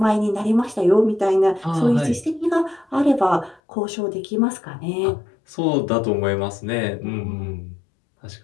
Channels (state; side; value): drops out; right; at 3.6 s